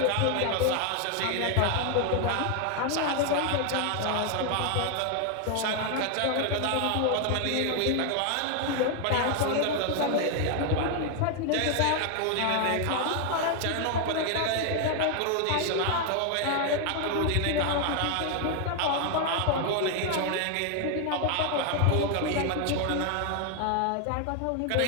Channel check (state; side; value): different; both; correlation 0.01